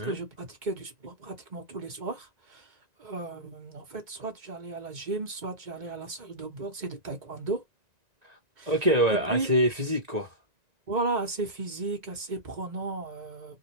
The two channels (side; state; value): left; late; 2.2 ms